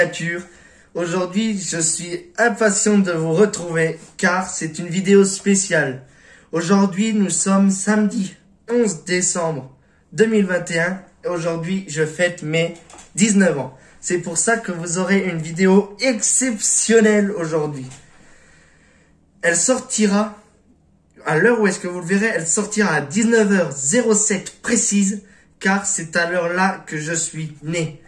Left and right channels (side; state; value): both; identical; correlation 1.00